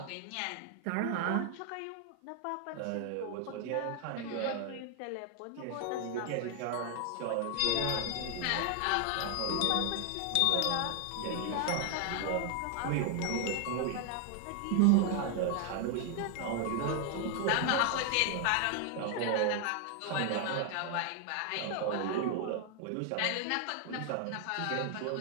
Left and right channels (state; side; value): different; both; correlation 0.00